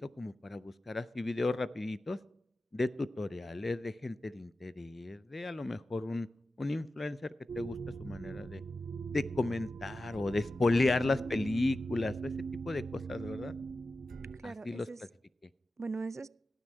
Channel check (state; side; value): normal; both; correlation 0.93